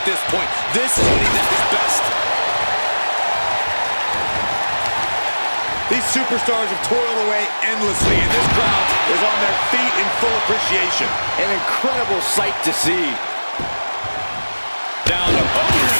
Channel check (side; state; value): both; inverted; correlation -1.00